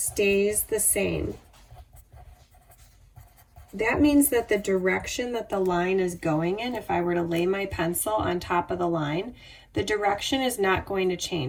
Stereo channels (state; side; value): identical; both; correlation 1.00